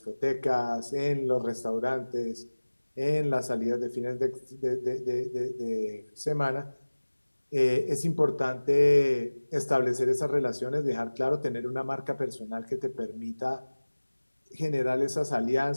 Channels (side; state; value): both; inverted; correlation -1.00